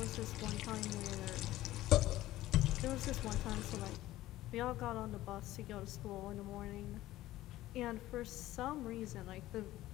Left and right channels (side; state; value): right; quieter; 15.7 dB